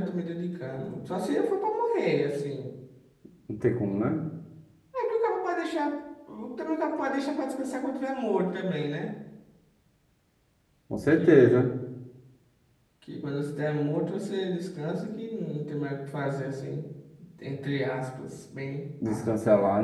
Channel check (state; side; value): identical; both; correlation 1.00